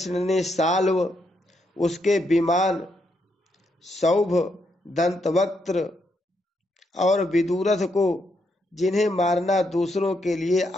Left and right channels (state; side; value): normal; both; correlation 0.78